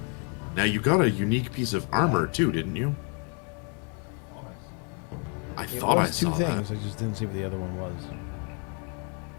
Now you got a unique piece of armor too, didn't you? I It thought I was two saw things. that. I just didn't see what the other one was.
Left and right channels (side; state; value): right; quieter; 38.5 dB